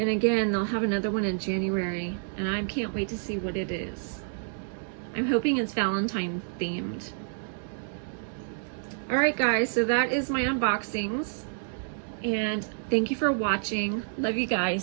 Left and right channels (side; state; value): left; silent; digital silence